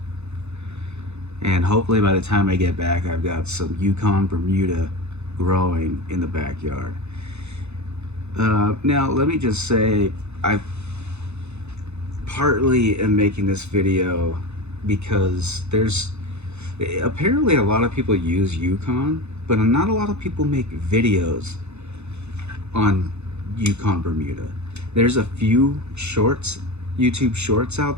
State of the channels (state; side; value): late; left; 0.81 ms